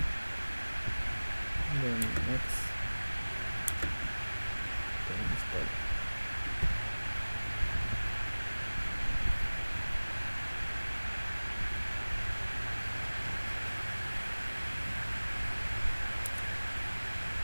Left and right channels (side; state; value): both; inverted; correlation -1.00